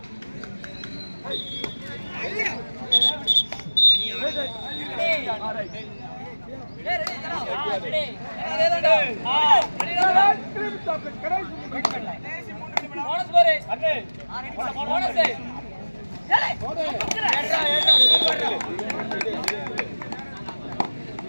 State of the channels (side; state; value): both; inverted; correlation -1.00